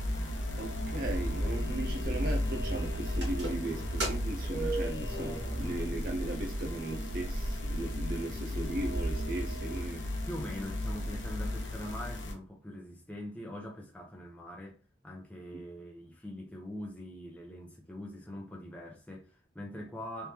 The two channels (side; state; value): both; normal; correlation 0.81